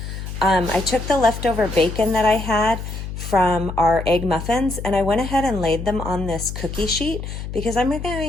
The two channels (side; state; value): left; noise; hum, 8 dB below the sound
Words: I took the leftover bacon that I had from our egg muffins and I went ahead and laid them on this cookie sheet because I'm